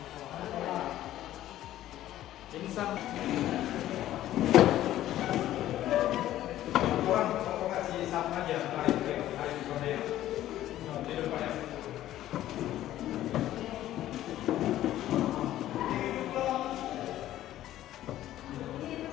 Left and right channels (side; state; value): right; quieter; 13.4 dB